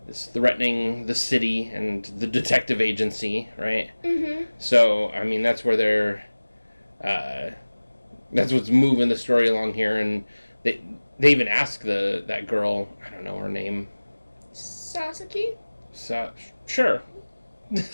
is threatening the city and the detective agency, right? Mm-hmm. So, I mean, that's where they're that's what's moving the story along here, and they even ask that girl, I don't know her name. Sasaki? Sure.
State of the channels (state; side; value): inverted; both; correlation -1.00